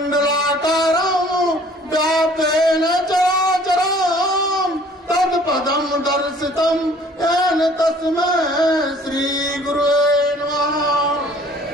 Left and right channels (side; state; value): both; normal; correlation 0.54